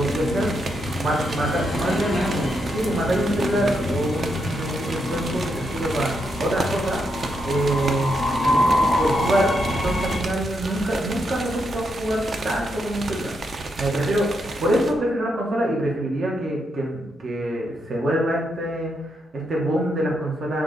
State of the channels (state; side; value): normal; both; correlation 0.81